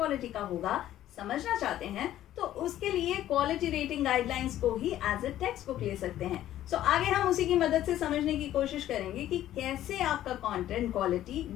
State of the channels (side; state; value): right; quieter; 12.8 dB